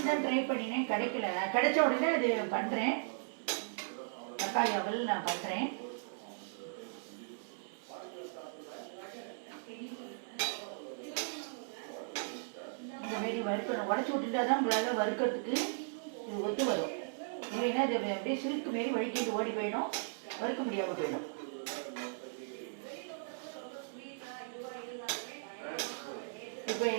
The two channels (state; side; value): silent; left; 53 dB below the other